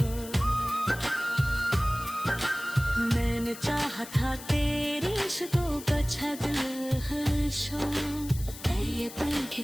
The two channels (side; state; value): left; noise; hiss, 14 dB below the sound